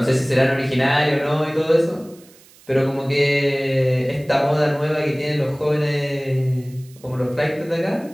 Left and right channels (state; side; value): noise; right; hiss, 26 dB below the sound